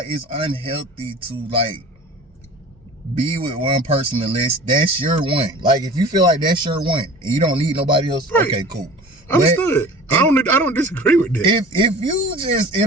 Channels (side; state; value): both; normal; correlation 0.41